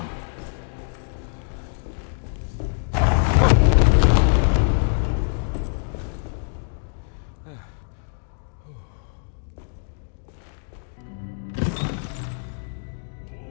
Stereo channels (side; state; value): right; silent; digital silence